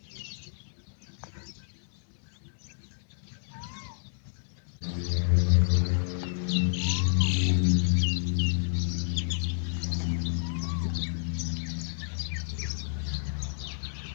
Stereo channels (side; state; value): right; silent; digital silence